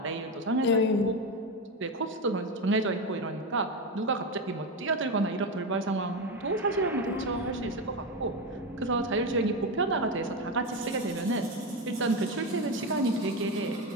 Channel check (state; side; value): normal; both; correlation 0.14